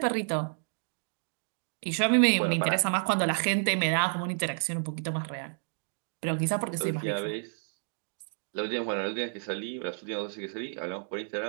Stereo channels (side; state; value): left; silent; digital silence